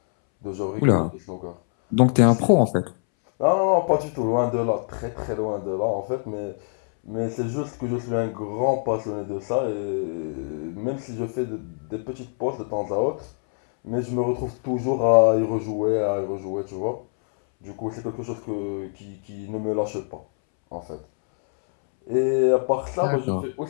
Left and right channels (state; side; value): silent; right; 62 dB below the other